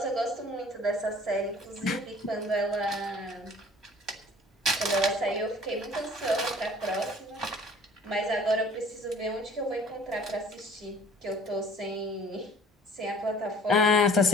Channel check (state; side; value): normal; both; correlation 0.50